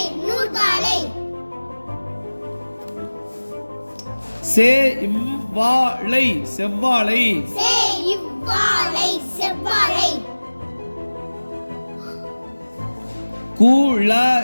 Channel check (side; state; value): both; inverted; correlation -1.00